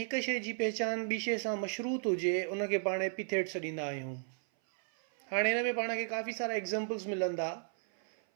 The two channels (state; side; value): silent; left; 55 dB below the other